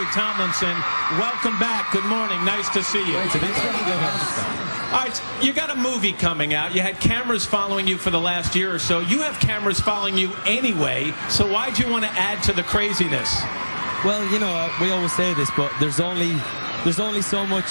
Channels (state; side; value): inverted; both; correlation -1.00